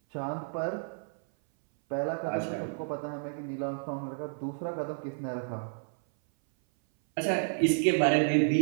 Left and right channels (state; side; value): silent; left; 57 dB below the other